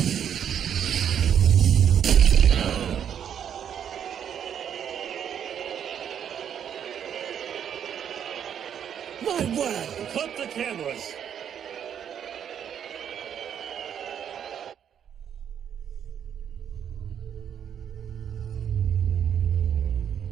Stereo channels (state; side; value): quieter; left; 8.8 dB